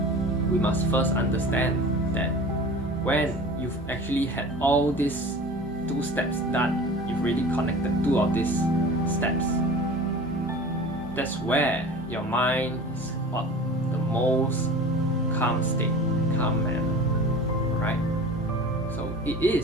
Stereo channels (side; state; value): both; normal; correlation 0.39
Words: we must first understand that when you've actually had all these 2 steps done, you've already connected 2 of these steps. That's where your mind is what the most calm state, calm manner, right? So it